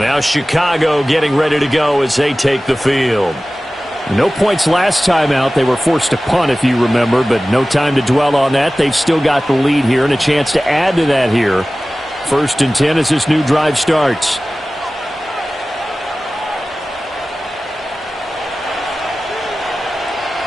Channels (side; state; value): both; normal; correlation 0.97